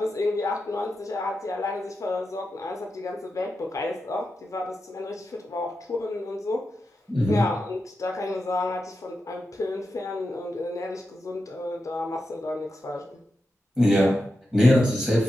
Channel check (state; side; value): normal; both; correlation 0.89